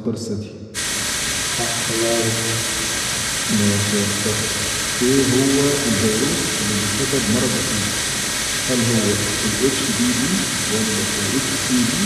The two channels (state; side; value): identical; both; correlation 1.00